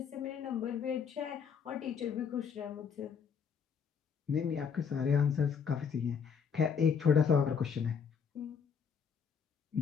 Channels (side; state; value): right; quieter; 6.7 dB